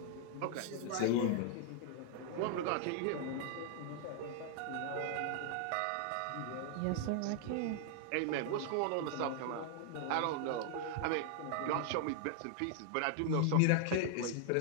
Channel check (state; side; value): different; both; correlation 0.00